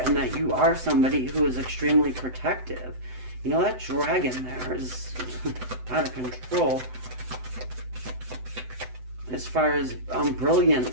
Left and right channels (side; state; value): left; late; 7.9 ms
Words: that you are somebody who is extremely protective. You know, that dragon there is out of control as far as